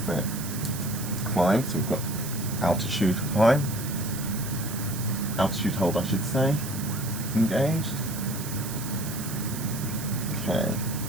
set climb. So we've got altitude climb. Altitude hold, I should say. Engaged. Okay.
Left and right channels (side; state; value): right; noise; hiss, 9 dB below the sound